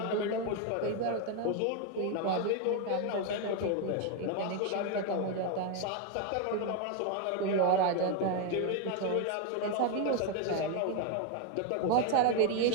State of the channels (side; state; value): both; different; correlation 0.01